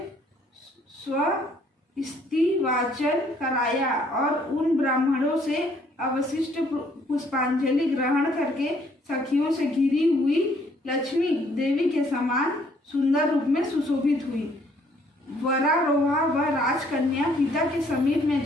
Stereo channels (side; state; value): both; normal; correlation 0.64